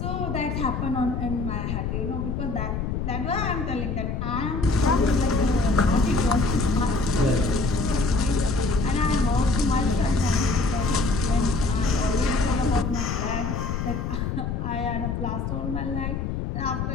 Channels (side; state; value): left; noise; rumble, 2 dB below the sound